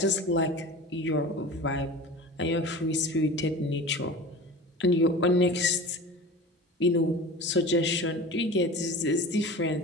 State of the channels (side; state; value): both; normal; correlation 0.35